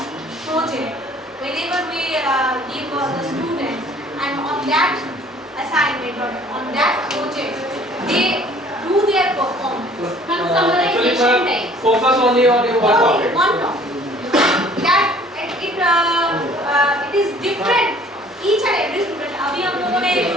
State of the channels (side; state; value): both; normal; correlation 0.54